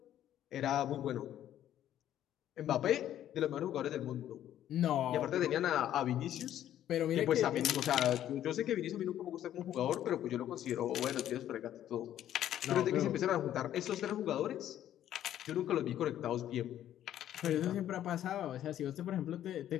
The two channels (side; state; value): right; quieter; 11.6 dB